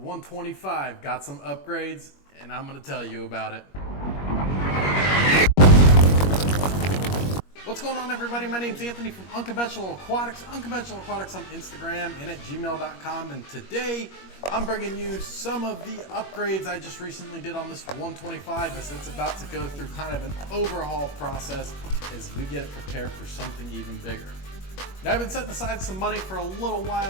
got some upgrades, and I'm gonna tell you about it. What's going on, everybody? My name's Anthony from Unconventional Aquatics. Unconventional Aquatics on Instagram and at gmail.com. And today I'm bringing you some of the upgrades I just recently did on this 125 as it's about to go through kind of an overhaul process as we get it prepared for something even bigger. Now, I've been setting aside some money for a little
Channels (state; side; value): late; right; 21 ms